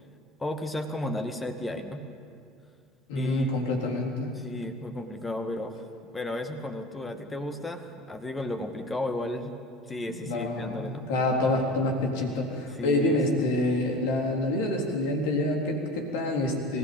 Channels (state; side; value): normal; both; correlation 0.37